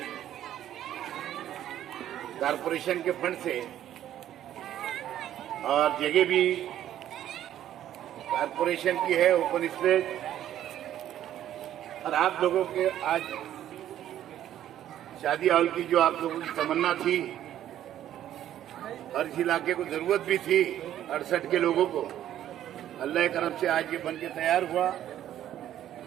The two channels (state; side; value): quieter; left; 11.7 dB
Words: कारपोरेशन के फंड से और जगह भी कारपोरेशन की है, ओपन स्पेस, और आप लोगों के आज शादी हॉल की जो आप लोगों की तमन्ना थी, हर इलाके को जरूरत भी थी 68 के लोगों को, अल्लाह करम से आज ये बन के तैयार हुआ